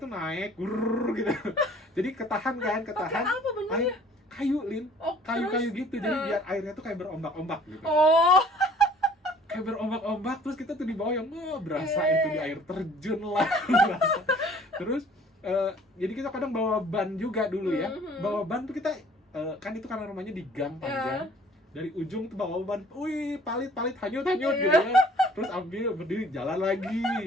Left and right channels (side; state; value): both; normal; correlation 0.53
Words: tuh naik, gitu. Jadi ketahan. Apa bentuknya? Air, kayu Lin, Oh, kayu gitu. Jadi biar airnya tuh kayak berombak-ombak gitu. Oh. Kayak berombak-ombak, terus kita tuh di bawah yang berasa itu di air terjun lah. Terus jadi kita kadang bawa ban juga dulu ya. Bawa ban tuh kita kan itu karena rumahnya di gang panjang. Dari ujung tuh bawa ban, wih palit hanyut gitu ya. Terus ambil berdiri jalan lagi.